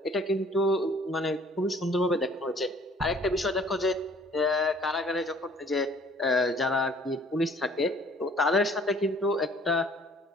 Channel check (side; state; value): both; normal; correlation 0.56